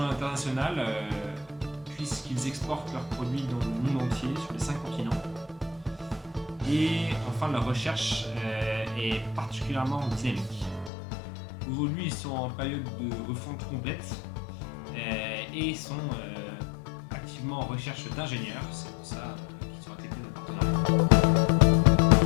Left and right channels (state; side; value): drops out; right; at 10.9 s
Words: l'international puisqu'ils exportent leurs produits dans le monde entier, sur les 5 continents. Et enfin, leur recherche est particulièrement dynamique. Aujourd'hui, ils sont en période de refonte complète et sont activement en recherche d'ingénieurs. C'est pour ça qu'ils sont intégrés dans le partenariat.